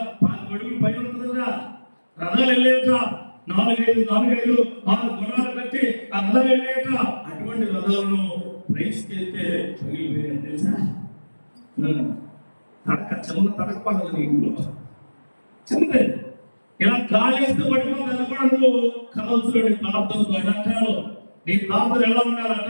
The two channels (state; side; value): inverted; both; correlation -1.00